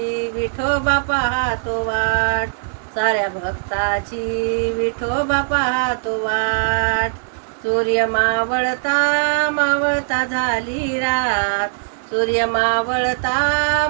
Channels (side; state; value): left; silent; digital silence